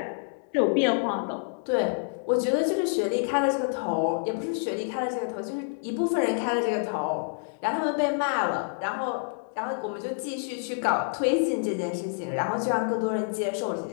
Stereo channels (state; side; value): silent; right; digital silence